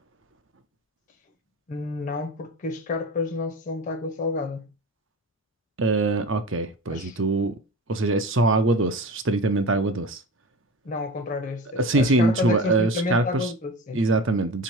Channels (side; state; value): both; normal; correlation 0.31